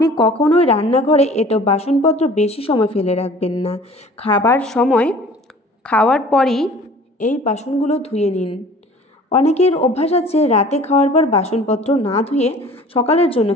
কখনোই রান্নাঘরে এঁটো বাসনপত্র বেশি সময় ফেলে রাখবেন না। খাওয়ার পরই এই বাসনগুলো ধুয়ে নিন। অনেকের অভ্যাস আছে রাতে খাওয়ার পর বাসনপত্র না ধুয়ে সকালের জন্য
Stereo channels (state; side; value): normal; both; correlation 0.47